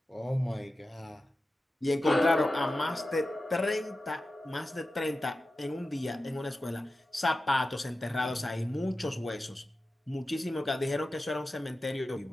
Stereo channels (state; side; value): normal; both; correlation 0.93